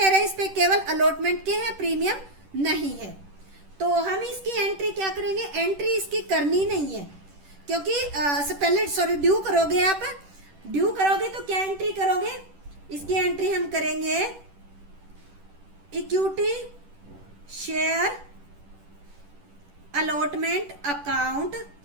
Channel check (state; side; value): late; left; 10 ms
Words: है इस पे केवल अलॉटमेंट के हैं, प्रीमियम नहीं है। तो हम इसकी एंट्री क्या करेंगे, एंट्री इसकी करनी नहीं है, क्योंकि पहले ड्यू करोगे, आप ड्यू करोगे तो क्या एंट्री करोगे, इसकी एंट्री हम करेंगे equity share allotment account,